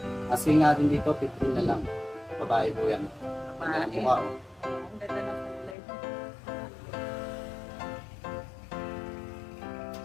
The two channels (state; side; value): drops out; right; at 5.8 s